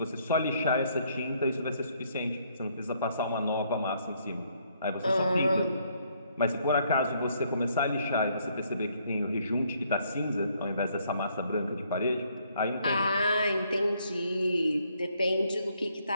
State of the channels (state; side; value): inverted; both; correlation -0.69